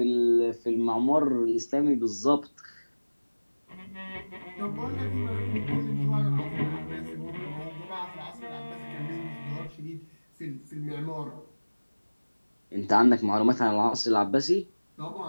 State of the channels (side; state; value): both; inverted; correlation -1.00